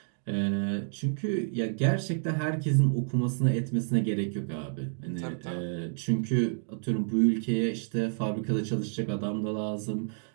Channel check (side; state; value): left; silent; digital silence